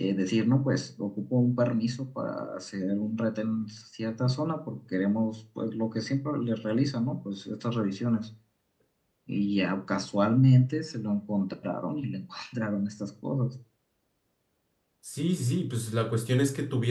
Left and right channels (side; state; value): both; identical; correlation 1.00